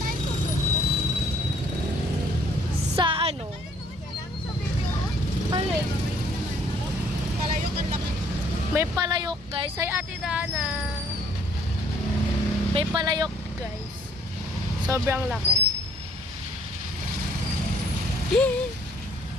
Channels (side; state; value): both; normal; correlation 0.61